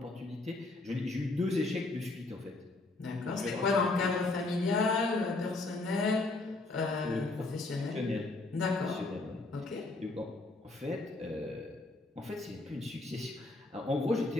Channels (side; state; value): right; quieter; 3.2 dB